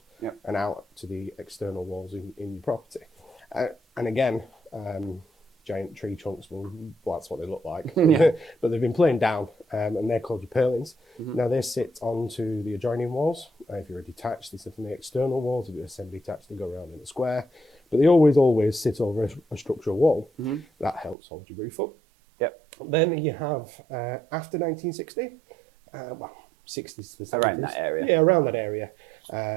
and out to the external walls in your property. And again, giant tree trunks, well, that's what they look like. But they've been planed down, and they're called your purlins. Now they sit onto the adjoining walls. If you're a detached, they sit on the external walls. If you're a semi-detached, they go around in a square. But they always sit over a structural wall. That helps hold your roof up. Then you have, after 1960, 60s to the 70s. Around that area. Yeah, around that area.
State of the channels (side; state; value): left; drops out; at 21.2 s